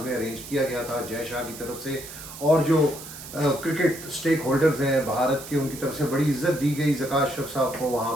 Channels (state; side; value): noise; right; hiss, 13 dB below the sound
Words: में अरेंज किया गया था जय शाह की तरफ से। और जो क्रिकेट स्टेक होल्डर्स हैं भारत के, उनकी तरफ से बड़ी इज्जत दी गई ज़का अशरफ साहब को वहाँ